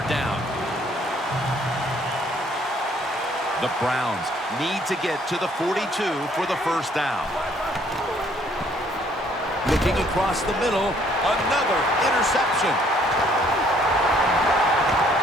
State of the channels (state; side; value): normal; both; correlation 0.63